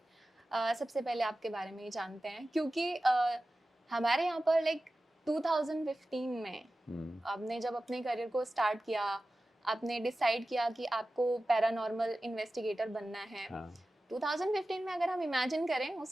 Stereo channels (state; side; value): normal; both; correlation 0.95